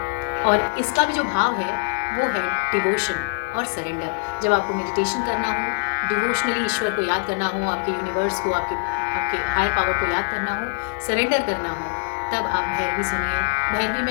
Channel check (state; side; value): silent; right; 60 dB below the other